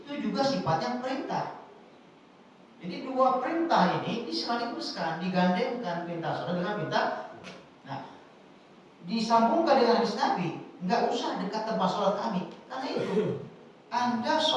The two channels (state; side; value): identical; both; correlation 1.00